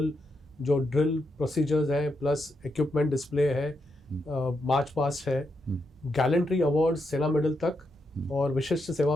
जो ड्रिल प्रोसीजर्स हैं, प्लस इक्विपमेंट डिस्प्ले है, मार्च पास्ट है, गैलेंट्री अवार्ड सेना मेडल तक और विशिष्ट सेवा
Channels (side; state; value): both; normal; correlation 0.82